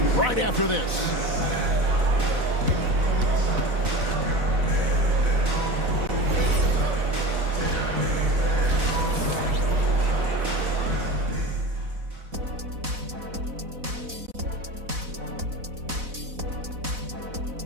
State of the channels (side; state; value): left; late; 4.0 ms